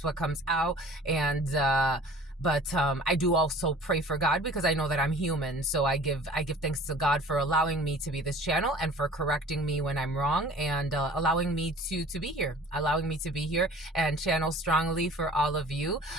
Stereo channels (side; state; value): both; normal; correlation 0.46